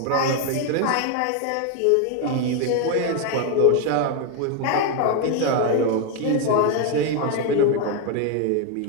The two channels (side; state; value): both; different; correlation 0.01